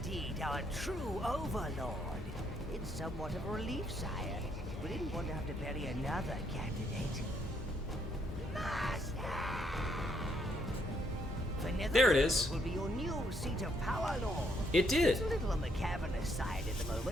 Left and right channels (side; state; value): both; normal; correlation 0.72